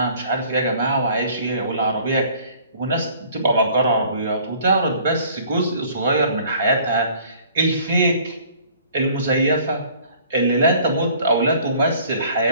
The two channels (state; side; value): inverted; both; correlation -0.54